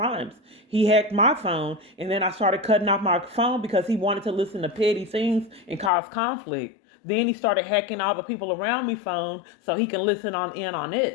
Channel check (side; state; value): right; drops out; at 5.9 s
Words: He hacked my phone, and then I started cutting off my phone because he wanted to listen to petty things and cause conflict. Then he started hacking all the people around me phone so he can listen on